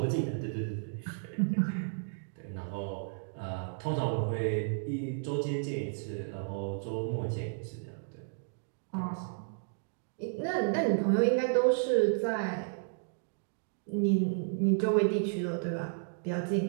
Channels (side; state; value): left; silent; digital silence